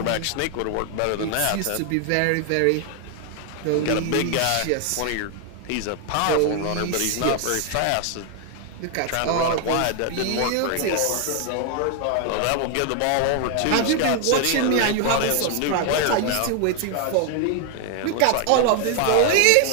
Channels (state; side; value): different; both; correlation 0.00